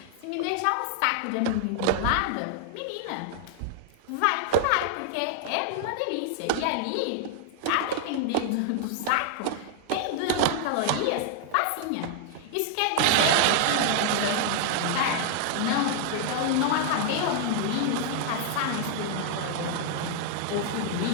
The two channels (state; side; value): different; both; correlation 0.00